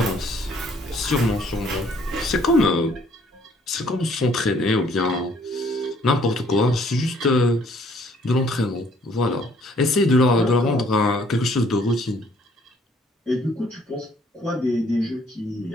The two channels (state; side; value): normal; both; correlation 0.62